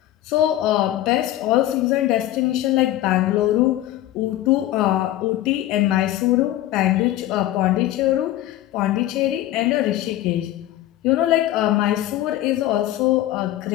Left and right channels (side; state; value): right; quieter; 14.3 dB